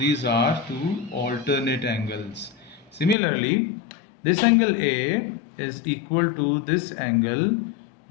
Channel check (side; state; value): right; drops out; at 3.2 s